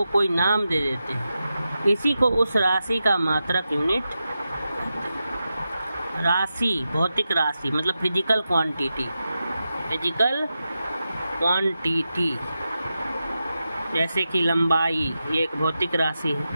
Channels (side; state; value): both; inverted; correlation -0.90